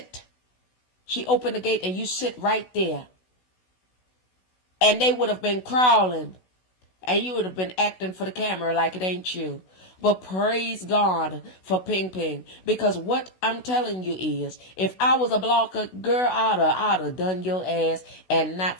She opened the gate and you sit right there. And they would have been crawling. And you would have been acting for the camera like it ain't you. But praise God for Ping Ping. Because what I'm telling you is, if I was a blocker, girl, I'd have done your ass and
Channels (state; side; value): late; right; 16 ms